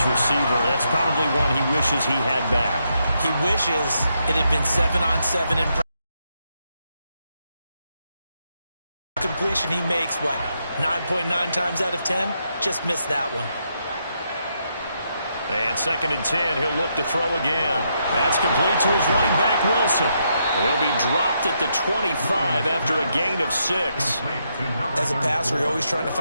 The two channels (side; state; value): both; inverted; correlation -0.80